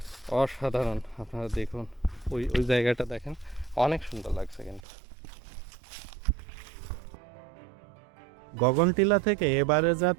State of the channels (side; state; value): left; drops out; at 4.8 s